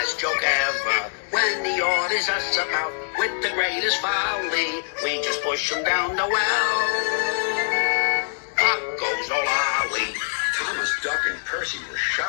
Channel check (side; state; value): right; silent; digital silence